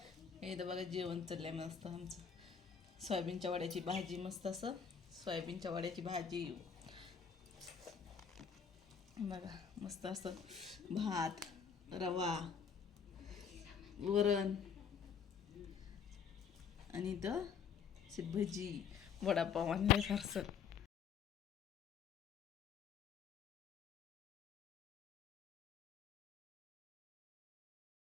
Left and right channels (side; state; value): right; quieter; 6.9 dB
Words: हे तर बघा जेवण चाललंय मस्त आमचं. सोयाबीनच्या वड्याची भाजी, मस्त असं सोयाबीनच्या वड्याची भाजी. बघा मस्त असं भात, रवा, वरण आणि इथं भजी, वडापाव आणले फारसं.